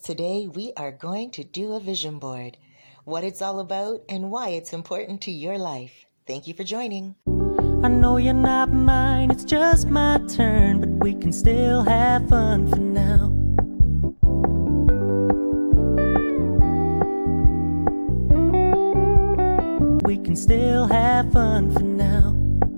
today we are going to do a vision board. What it's all about and why it's important to your life. Thank you for joining. I know you're not mine, it's just my turn, but we can still have fun for now. We can still have fun for now.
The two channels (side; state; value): both; inverted; correlation -1.00